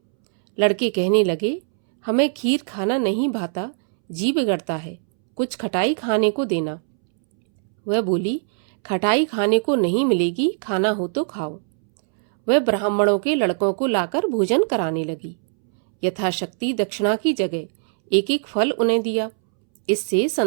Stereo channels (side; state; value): left; silent; 65 dB below the other